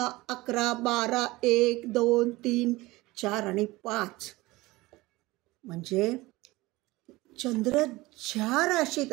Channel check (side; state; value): left; quieter; 20.2 dB